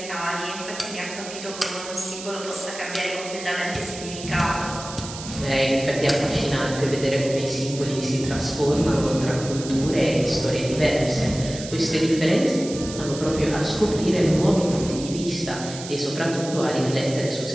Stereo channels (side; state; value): right; noise; hiss, 11 dB below the sound